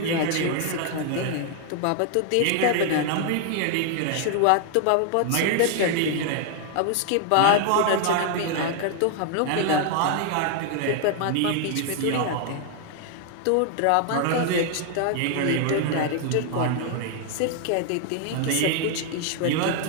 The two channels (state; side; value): different; both; correlation 0.00